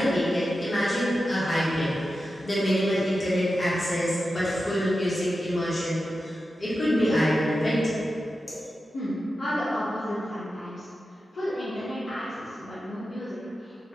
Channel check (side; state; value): both; normal; correlation 0.91